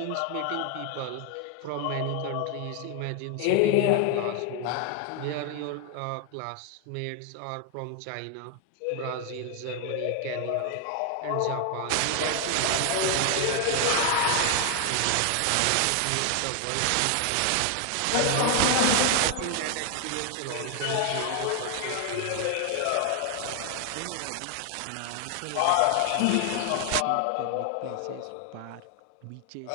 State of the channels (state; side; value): different; both; correlation 0.00